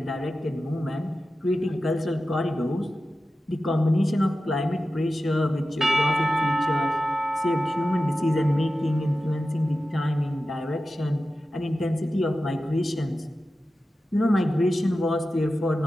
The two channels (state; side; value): normal; both; correlation 0.93